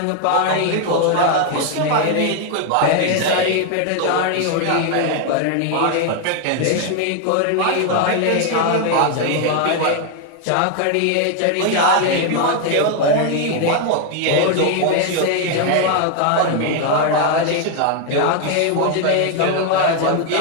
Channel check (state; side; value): different; both; correlation 0.00